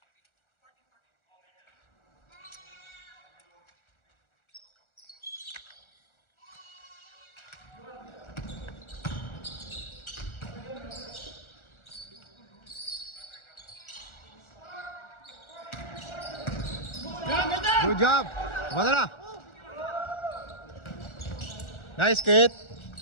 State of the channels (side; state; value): right; late; 1.4 ms